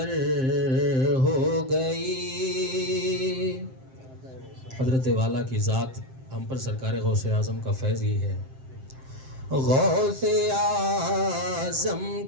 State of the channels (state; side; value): late; left; 7.7 ms